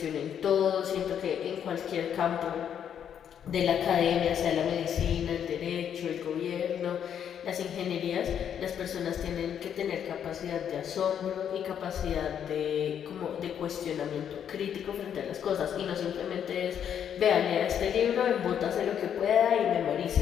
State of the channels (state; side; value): quieter; right; 8.8 dB